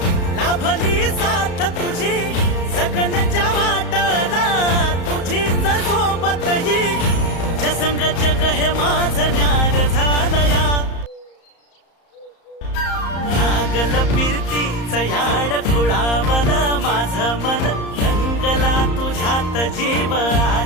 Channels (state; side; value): late; right; 34 ms